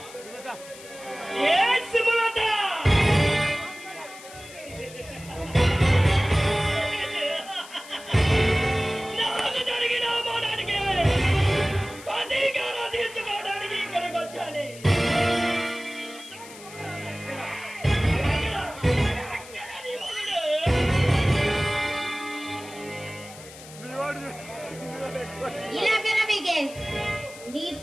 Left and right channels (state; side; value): noise; left; hiss, 17 dB below the sound